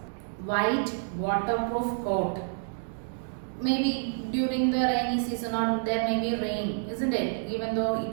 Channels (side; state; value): left; silent; digital silence